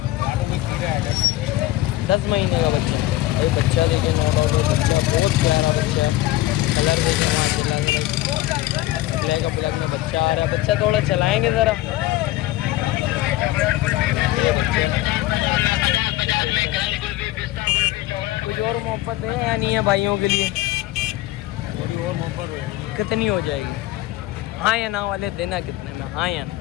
10 महीने का बच्चा भाई। बच्चा देखिए, नो डाउट भाई बच्चा बहुत प्यारा बच्चा है। कलर देखिए माशाल्लाह, ब्लैक में बच्चा आ रहा है। बच्चा थोड़ा चलाएँगे ज़रा। कुछ और मोहब्बत है या नहीं है भाइयों के लिए? थोड़ी और मोहब्बत कितनी हो जाएगी? हाँ या ना वाले देना कितने में? हाँ या ना?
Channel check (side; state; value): right; quieter; 16.0 dB